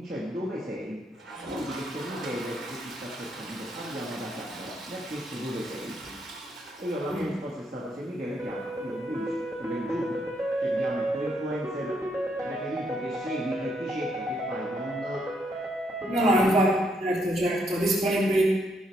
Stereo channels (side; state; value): both; normal; correlation 0.74